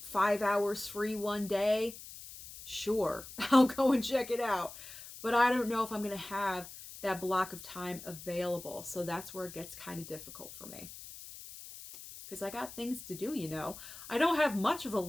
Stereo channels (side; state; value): left; noise; hiss, 14 dB below the sound